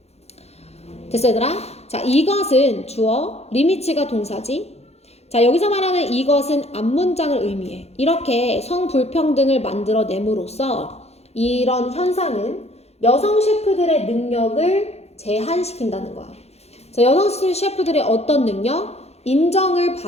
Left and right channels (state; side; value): late; right; 0.31 ms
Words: 됐어 얘들아? 자, 이것은 주어, 리미츠가 동사지. 자, 여기서 말하는 이것은 앞문장을 의미해. 이렇게 성불평등을 만들어냄으로써 이런 현상은 여성 셰프들의 능력을 제한시킨다는 거야. 자, 여성 셰프들의 어떤 능력? 인정을